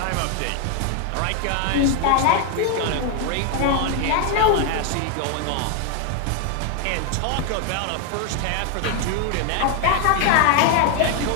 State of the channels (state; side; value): different; both; correlation 0.01